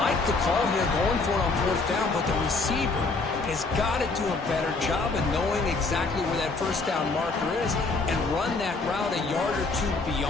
like the call here going for it on 4th down, but the receiver has got to do a better job of knowing exactly where that first down marker is and run that route a yard or two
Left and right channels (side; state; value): right; quieter; 3.8 dB